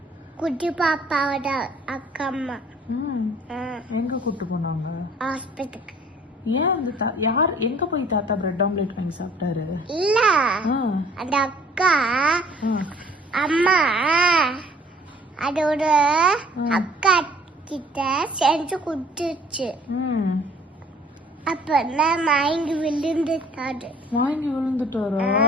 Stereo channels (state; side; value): normal; both; correlation 0.55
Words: குட்டி பாப்பாவோட அக்கா அம்மா. எங்க கூட்டு போனாங்க? ஹாஸ்பிட்டலுக்கு. ஏன் அந்த யார் எங்க போய் தாத்தா பிரெட் ஆம்லேட் வாங்கி சாப்பிட்டாரு? இல்ல, அந்த அக்கா அம்மா அதோட அக்கா கிட்ட செஞ்சு கொடுத்துச்சு. அப்ப மயங்கி விழுந்துட்டாரு. மயங்கி விழுந்துட்டாரா?